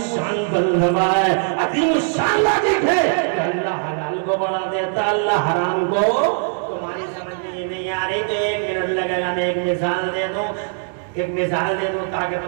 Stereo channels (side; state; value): left; silent; 63 dB below the other